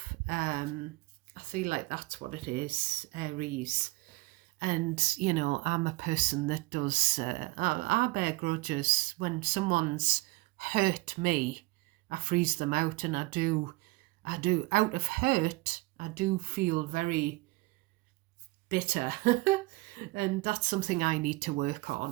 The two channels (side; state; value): left; quieter; 22.8 dB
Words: I feel like that's what it is, Aries. And, I'm a person that does, I bear grudges. When someone's hurt me, I freeze them out, and out of hurt, I do feel very bitter. And that's something I need to work